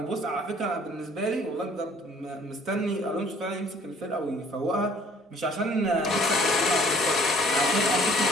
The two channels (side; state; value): both; normal; correlation 0.56